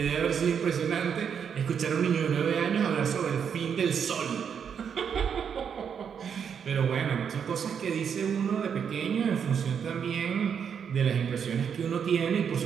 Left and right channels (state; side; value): quieter; left; 7.4 dB